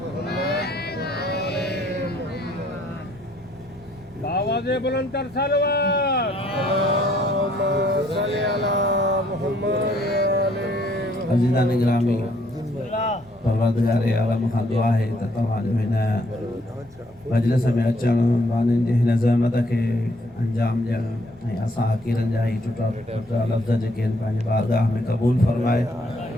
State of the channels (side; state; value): both; normal; correlation 0.66